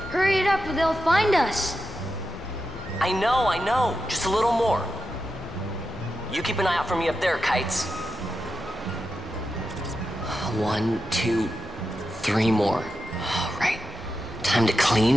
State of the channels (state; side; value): normal; both; correlation 0.89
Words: Hurry it up or they'll find us. I know. Just a little more. You keep an eye out for me up there, Kites. 1, 2, 3 more. All right. Time to